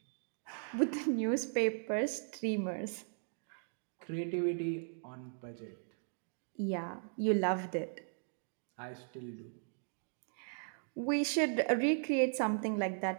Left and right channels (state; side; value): silent; left; digital silence